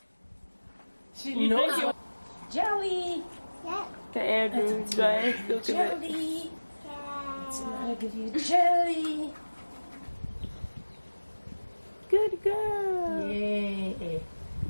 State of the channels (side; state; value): both; inverted; correlation -1.00